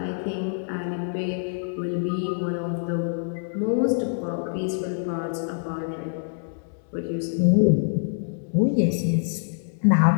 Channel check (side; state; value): right; silent; digital silence